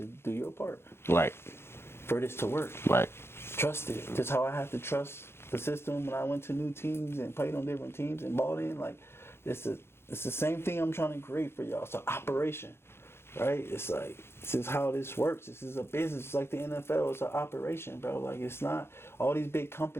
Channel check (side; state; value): right; late; 0.12 ms